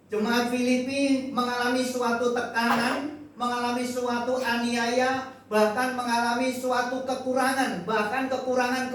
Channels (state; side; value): identical; both; correlation 1.00